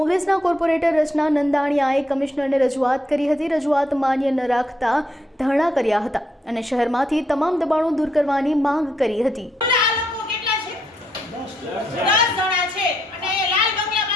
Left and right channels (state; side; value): normal; both; correlation 0.77